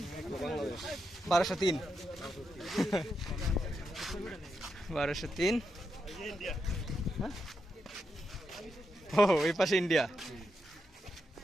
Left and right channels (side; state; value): both; normal; correlation 0.84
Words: 1203। 1203। ও এই পাশে ইন্ডিয়া